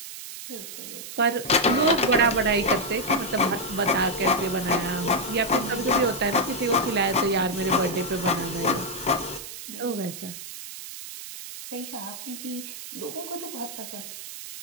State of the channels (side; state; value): right; noise; hiss, 11 dB below the sound